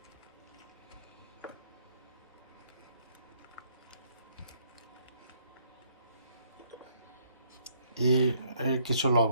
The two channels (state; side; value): inverted; both; correlation -0.67